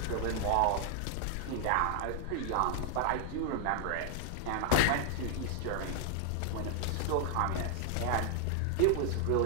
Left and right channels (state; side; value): different; both; correlation 0.00